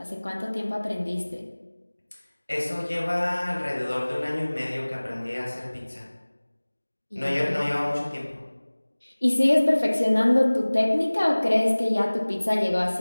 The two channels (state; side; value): inverted; both; correlation -1.00